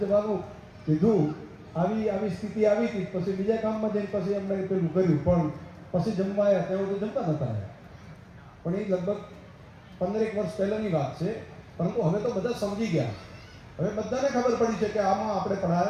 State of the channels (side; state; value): both; identical; correlation 1.00